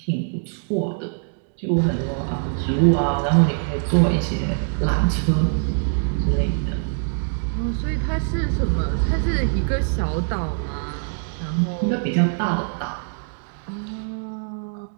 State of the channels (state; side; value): silent; left; 63 dB below the other